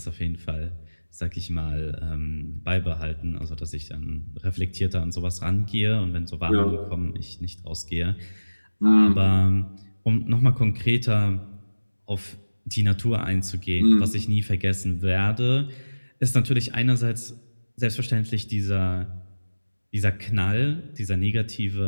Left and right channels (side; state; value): both; inverted; correlation -1.00